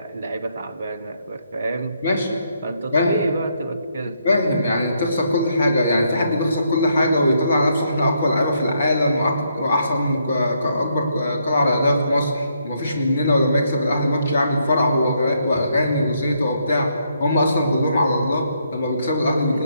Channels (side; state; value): both; inverted; correlation -0.75